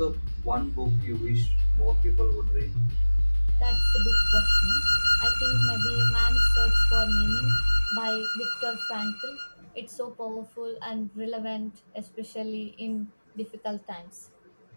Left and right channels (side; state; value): both; inverted; correlation -1.00